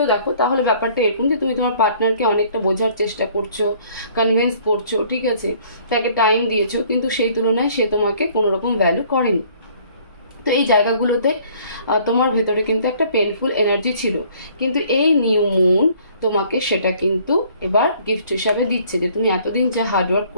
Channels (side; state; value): both; inverted; correlation -0.58